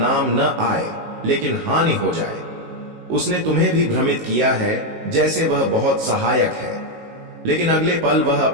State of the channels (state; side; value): late; left; 19 ms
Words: न आए लेकिन हानि हो जाए। उसने तुम्हें भी भ्रमित किया है जैसे वह बहुत सहायक है, लेकिन अगले पल वह